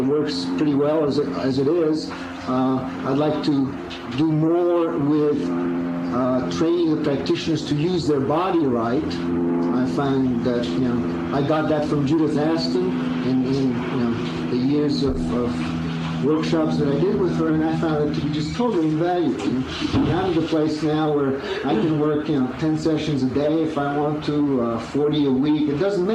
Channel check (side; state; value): both; identical; correlation 1.00